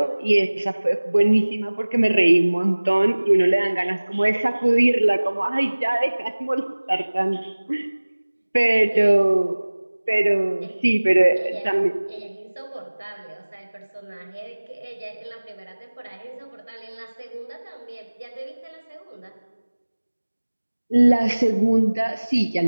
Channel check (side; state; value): both; inverted; correlation -1.00